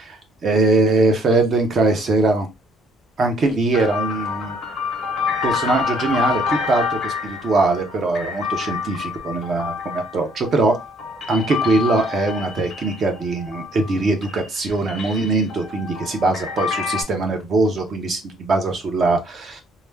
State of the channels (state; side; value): normal; both; correlation 0.64